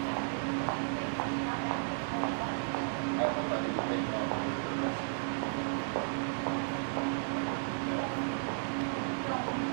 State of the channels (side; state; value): left; silent; 55 dB below the other